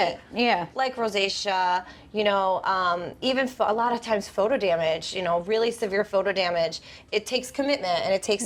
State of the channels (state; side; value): identical; both; correlation 1.00